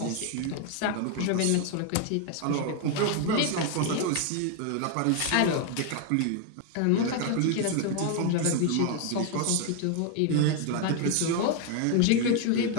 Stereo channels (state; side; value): different; both; correlation 0.01